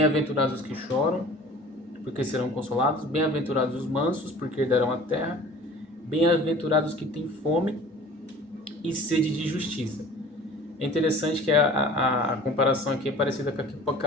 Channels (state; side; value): normal; both; correlation 0.45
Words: os que choram, porque serão consolados. Bem-aventurados os mansos, porque herdarão a terra. Bem-aventurados os que têm fome e sede de justiça. É interessante que a comparação aqui é parecida com